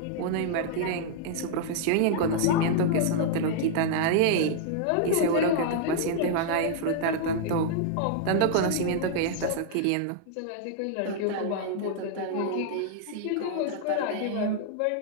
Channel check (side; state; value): both; different; correlation -0.01